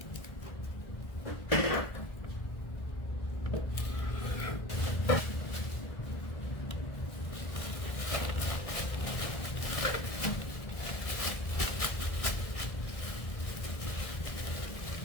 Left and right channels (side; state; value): right; late; 1.6 ms